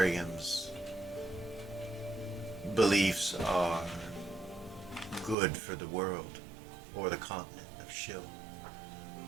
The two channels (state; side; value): drops out; left; at 5.4 s